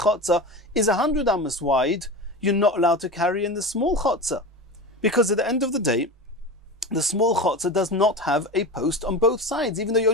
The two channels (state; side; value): normal; both; correlation 0.27